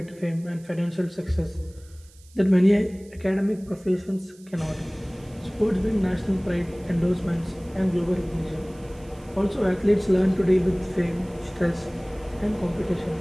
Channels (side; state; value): right; noise; hiss, 27 dB below the sound